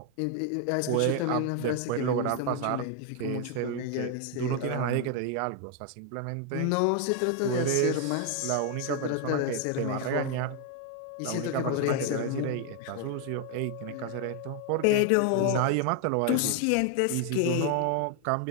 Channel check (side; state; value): both; different; correlation 0.00